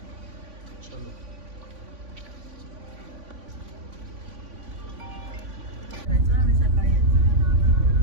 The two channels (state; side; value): late; left; 3.5 ms